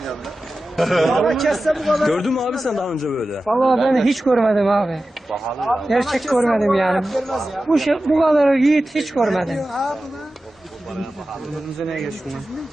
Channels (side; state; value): both; normal; correlation 0.94